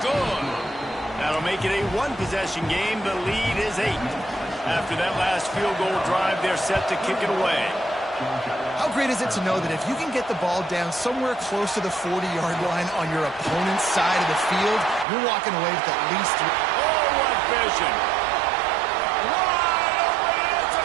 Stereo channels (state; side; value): drops out; left; at 15.1 s